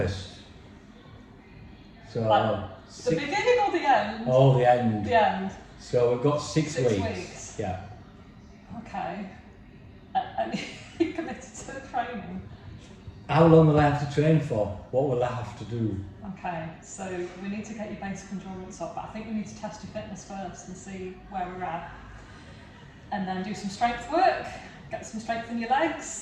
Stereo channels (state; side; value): identical; both; correlation 1.00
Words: So, Like, the beginning or the end? oh, the end. The end. So we've got 6 6 weeks. weeks. Yeah. Okay. And you committed to the training. How long will I have to train for? What will I have to do? Okay, so we need to get your basic endurance up, but I think we need to test your fitness first and see where we're at. And then do some strength work, get some strength in your